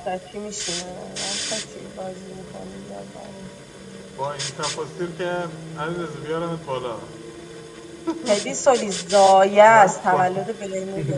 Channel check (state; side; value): identical; both; correlation 1.00